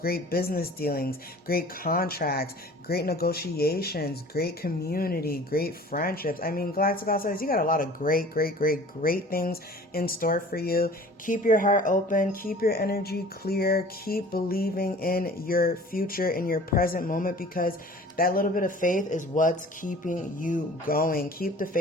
business dealings, great contracts, great negotiations, great community, great friendships. I mean, Galactic All-Stars, you got a lot of great things in store for you. Keep your heart open, keep your energy clear, keep believing in your future, in your present moment, because that little bit of faith is what's keeping you going. Keep the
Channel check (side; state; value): both; normal; correlation 0.46